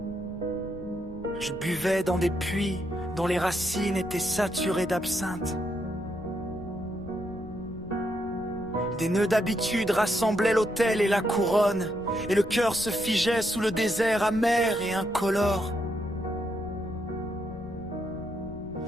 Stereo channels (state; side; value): noise; left; rumble, 15 dB below the sound